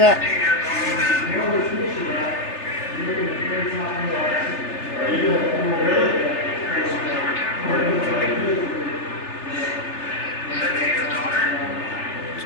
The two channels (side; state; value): right; late; 3.3 ms